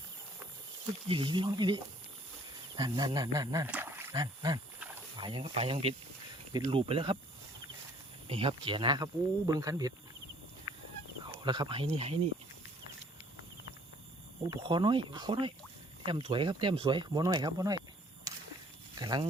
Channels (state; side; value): normal; both; correlation 0.58